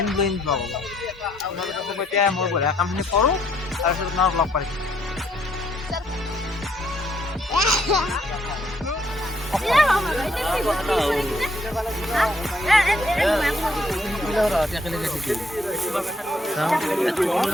ব্লয়িং ব্লগ হ'ব আপোনালোকে এতিয়া মই বঢ়িয়া কামখিনি কৰোঁ তাৰপিছত আপোনাক লগ পাই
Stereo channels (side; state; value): both; normal; correlation 0.70